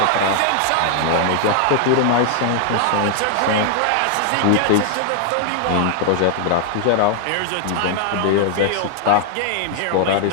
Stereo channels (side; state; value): both; different; correlation 0.00